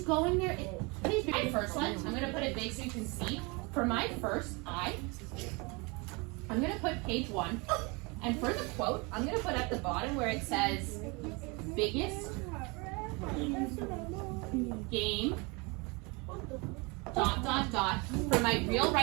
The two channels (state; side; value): quieter; left; 28.3 dB